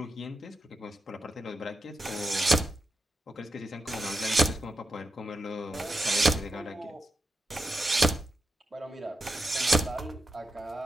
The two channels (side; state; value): both; normal; correlation 0.89